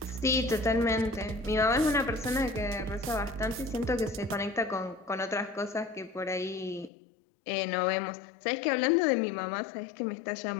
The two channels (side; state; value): right; drops out; at 6.9 s